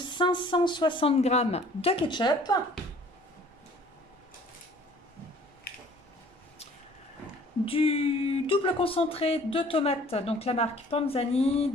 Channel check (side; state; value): both; normal; correlation 0.53